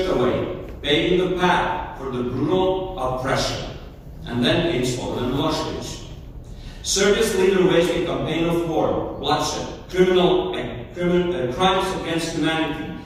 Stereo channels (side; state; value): both; identical; correlation 1.00